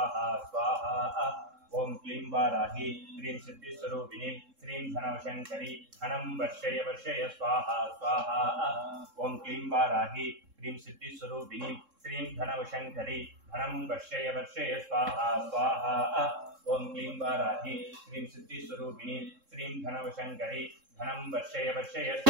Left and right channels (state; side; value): late; left; 3.7 ms